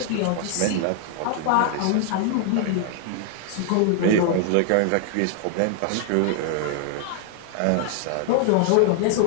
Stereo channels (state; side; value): different; both; correlation 0.00